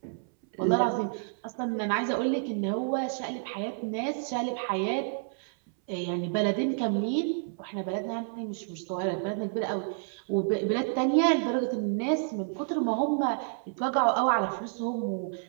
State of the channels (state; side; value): silent; left; 58 dB below the other